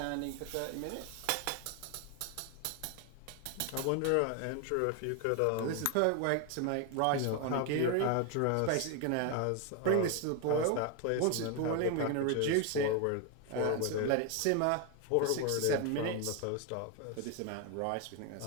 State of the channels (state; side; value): different; both; correlation 0.01